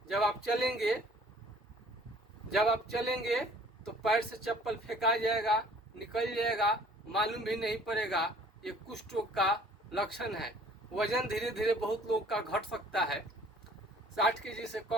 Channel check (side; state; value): both; normal; correlation 0.54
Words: जब आप चलेंगे तो पैर से चप्पल फेंका जाएगा, निकल जाएगा, मालूम भी नहीं पड़ेगा। ये कुष्ठ रोग का लक्षण है। वजन धीरे धीरे बहुत लोग का घट सकता है। 60 केजी से